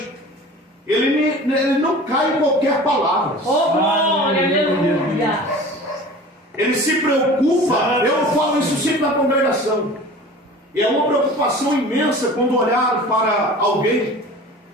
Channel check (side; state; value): both; normal; correlation 0.40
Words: ele não cai em qualquer palavra. Oh, glória, aleluia. Ele se preocupa. Eu falo isso sempre na congregação. E é uma preocupação imensa quando olhar para alguém